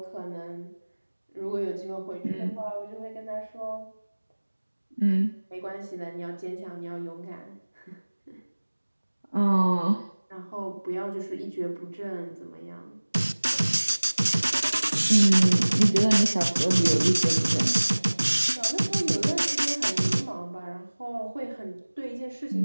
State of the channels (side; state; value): both; inverted; correlation -1.00